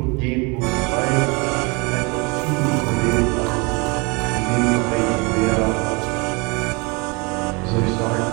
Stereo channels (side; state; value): left; quieter; 29.2 dB